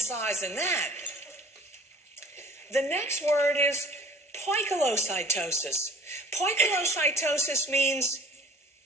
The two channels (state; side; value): normal; both; correlation 0.49